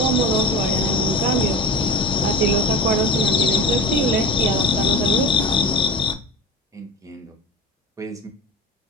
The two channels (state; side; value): normal; both; correlation 0.30